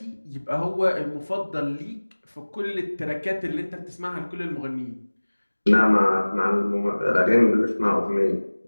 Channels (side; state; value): both; inverted; correlation -1.00